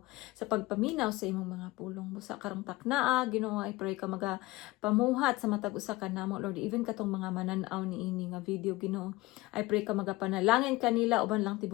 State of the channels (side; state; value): right; quieter; 20.3 dB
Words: sa imong mga pulong busa karong taknaa Ginoo. I pray ka pamuhat sa matag usa ka namo Lord, even katong mga manan-aw ni ini nga video Ginoo. I pray ka magapanalangin kanila uban lang